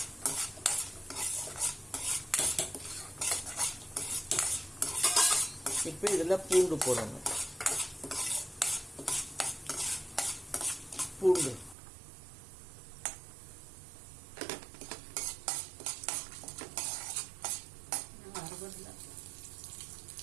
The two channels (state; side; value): drops out; left; at 11.8 s